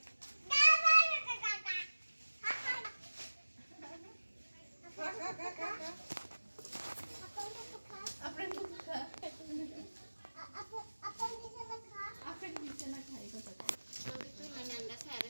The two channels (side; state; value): both; inverted; correlation -1.00